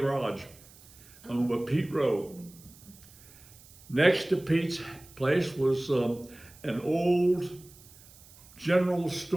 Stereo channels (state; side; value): noise; right; hiss, 23 dB below the sound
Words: owned by Pete Rowe. Next to Pete's place was an old general